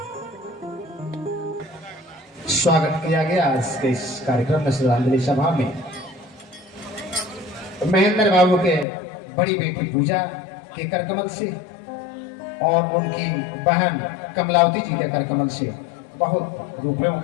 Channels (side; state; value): right; drops out; at 8.8 s